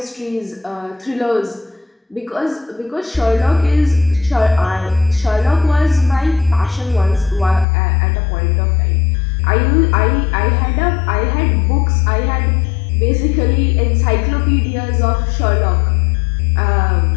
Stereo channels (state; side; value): drops out; right; at 7.7 s